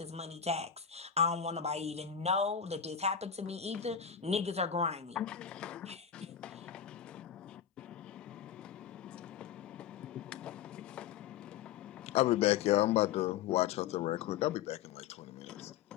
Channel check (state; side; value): quieter; right; 8.4 dB